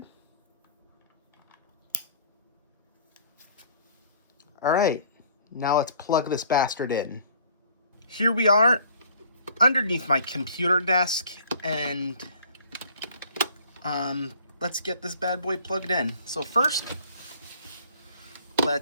All right, now let's plug this bastard in. Here we are underneath my computer desk, and let's get this bad boy plugged in. So first,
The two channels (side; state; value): both; inverted; correlation -0.54